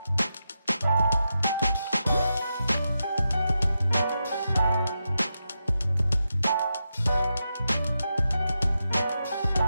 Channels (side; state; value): both; inverted; correlation -0.87